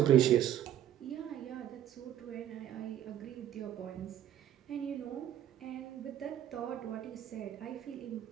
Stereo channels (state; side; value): quieter; left; 11.2 dB